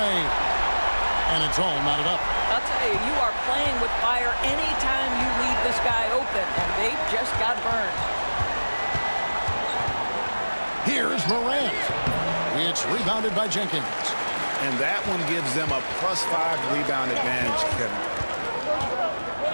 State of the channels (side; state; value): both; inverted; correlation -1.00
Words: And it's all knotted up. I'll tell you, you are playing with fire anytime you leave this guy open, and they just got burned. Here's Morant. It's rebounded by Jenkins. And that one gives them a +5 rebound advantage, Kevin.